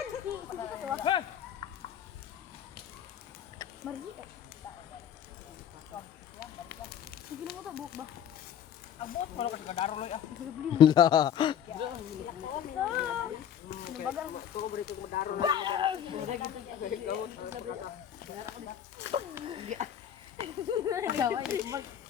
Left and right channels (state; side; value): quieter; right; 9.4 dB